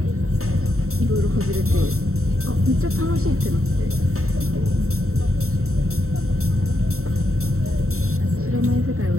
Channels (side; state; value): left; late; 0.63 ms